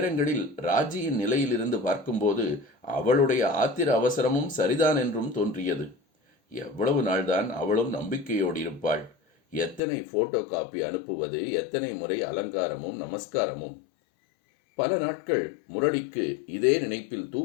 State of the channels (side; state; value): right; drops out; at 9.8 s